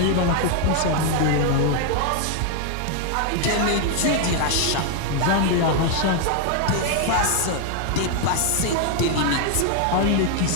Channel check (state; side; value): different; both; correlation 0.01